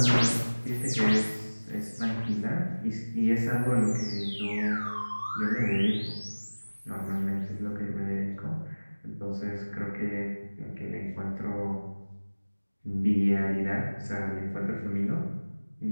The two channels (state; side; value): inverted; both; correlation -1.00